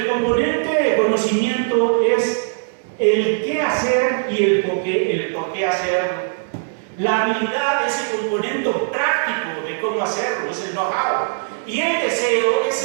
componente de conocimiento es el qué hacer y el por qué hacerlo. La habilidad es el componente práctico de cómo hacerlo, es el know-how. Y el deseo es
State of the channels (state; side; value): silent; left; digital silence